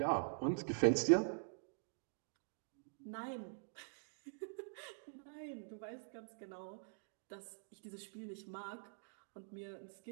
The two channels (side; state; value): left; silent; digital silence